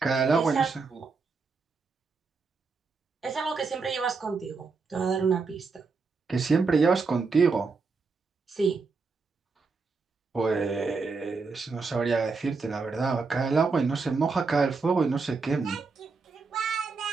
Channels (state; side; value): quieter; left; 4.5 dB